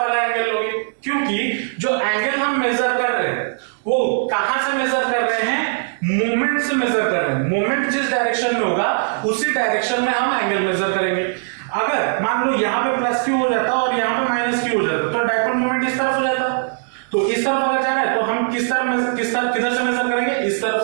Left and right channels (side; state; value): left; silent; digital silence